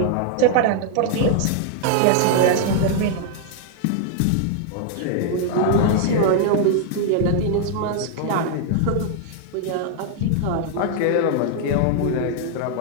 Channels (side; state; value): both; different; correlation 0.00